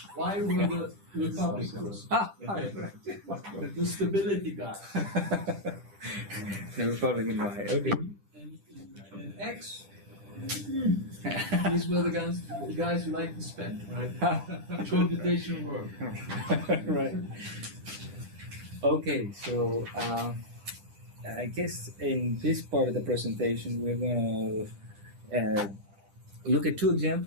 Why were the Republicans? The stability guy. The Republican Y. Okay. And X. These were the guys who like to spend, right? Computational work. Right. Okay, so I guess in this part of the presentation we're going to look at two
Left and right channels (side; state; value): left; late; 10 ms